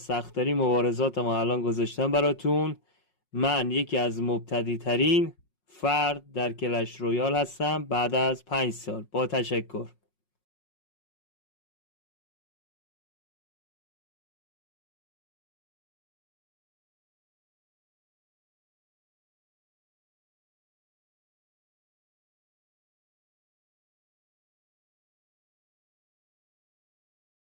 مبارزات ما الان گذاشتم براتون. من یکی از مبتدی ترین فرد در کلش رویال هستم بعد از 5 سال. با تشکر.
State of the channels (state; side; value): late; right; 5.5 ms